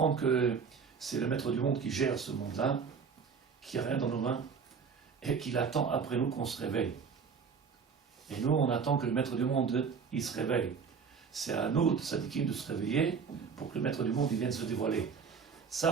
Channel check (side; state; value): left; quieter; 6.0 dB